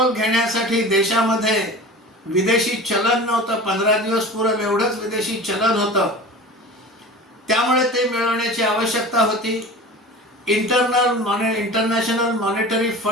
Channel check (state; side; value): normal; both; correlation 0.36